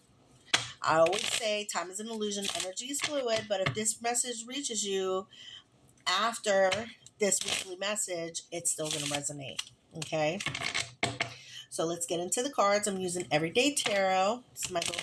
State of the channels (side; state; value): both; identical; correlation 1.00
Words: I always say time is an illusion, energy is fluid, but if this message reaches you after this weekly message, it's still going to resonate. Okay? So let's get into the cards. I'm using Everyday Tarot. It's my little